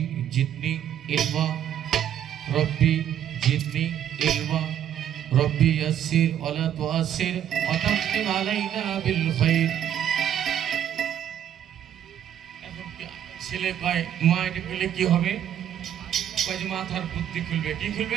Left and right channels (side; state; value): left; quieter; 10.2 dB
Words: জিদনি ইলমা, রব্বি জিদনি ইলমা, রব্বি ইয়াসসির ওয়ালা তুআসসির ওয়া তাম্মিম আলাইনা বিল খাইর। এখন ছেলে কয় মা এটা করলে কি হবে? কয় যে মাথার বুদ্ধি খুলবে। কি